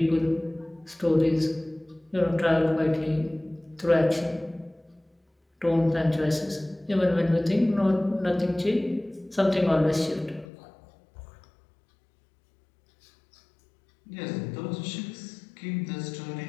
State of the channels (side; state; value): right; drops out; at 10.5 s